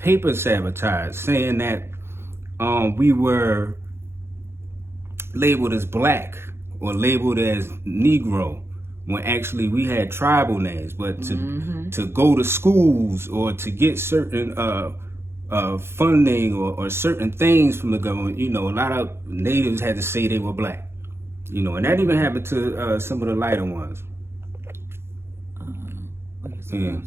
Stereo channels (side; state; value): left; late; 0.12 ms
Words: sabotaged, saying that we were labeled as black or labeled as Negro, when actually we had tribal names. But to go to schools or to get certain funding or certain things from the government, you know, a lot of natives had to say they were black, you know, and that even happened to some of the lighter ones. Yeah.